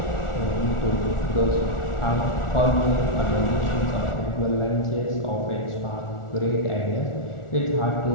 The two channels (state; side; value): late; right; 1.4 ms